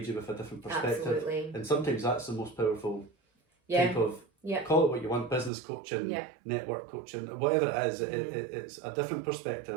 you with a different perspective. Absolutely. And sometimes that's the most powerful type of... Call it what you want, business coaching, network coaching, whatever it is, it's a different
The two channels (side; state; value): left; drops out; at 5.5 s